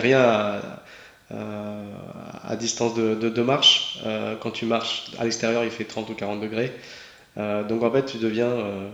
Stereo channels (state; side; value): identical; both; correlation 1.00